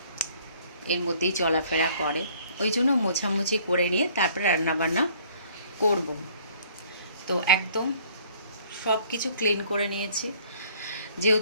এর মধ্যেই চলাফেরা করে। ওই জন্য মোছামুছি করে নিয়ে তারপরে রান্নাবান্না করব। তো একদম সব কিছু ক্লিন করে নিয়েছি।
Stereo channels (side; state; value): both; inverted; correlation -0.58